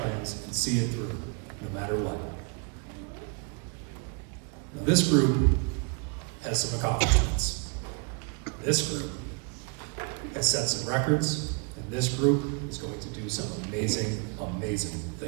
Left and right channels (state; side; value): quieter; left; 35.5 dB